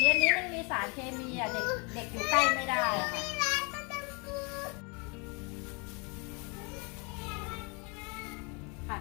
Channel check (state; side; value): quieter; right; 32.1 dB